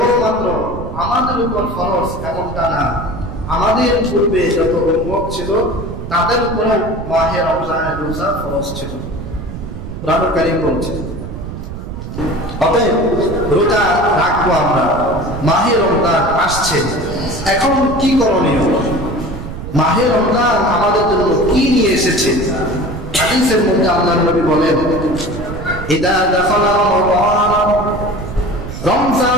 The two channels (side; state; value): right; noise; rumble, 9 dB below the sound